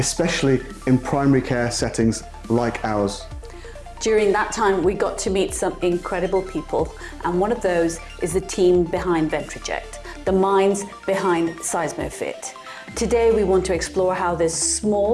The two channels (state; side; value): identical; both; correlation 1.00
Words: in primary care settings like ours. During that time, we got to meet some incredible people, and one of those is the team behind VentriJect, the minds behind Seismofit. Today, we want to explore how this